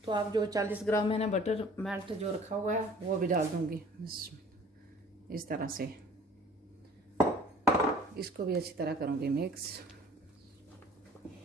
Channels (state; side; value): normal; both; correlation 0.49